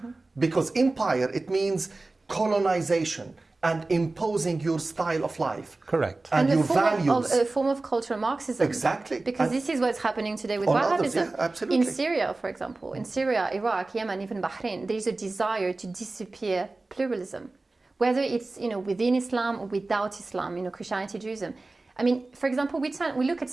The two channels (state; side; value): quieter; left; 3.3 dB